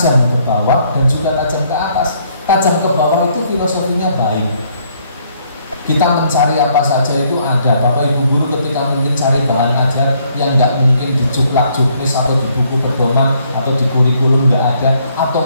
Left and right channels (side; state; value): both; inverted; correlation -0.68